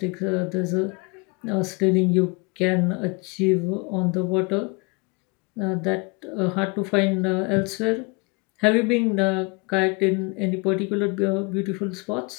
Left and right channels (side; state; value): right; quieter; 29.8 dB